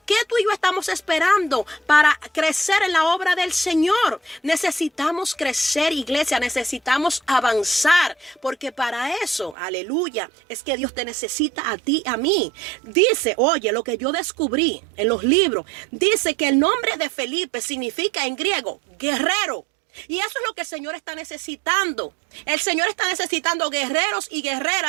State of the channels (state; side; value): drops out; left; at 9.6 s